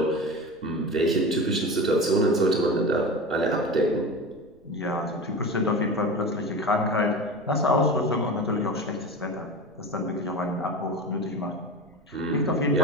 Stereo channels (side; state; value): right; noise; rumble, 29 dB below the sound